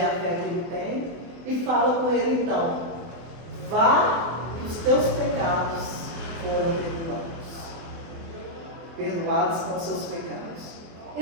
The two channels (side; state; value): left; late; 24 ms